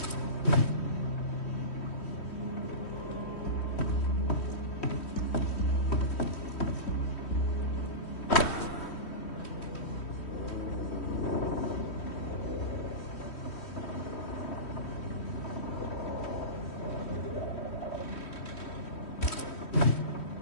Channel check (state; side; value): late; right; 3.1 ms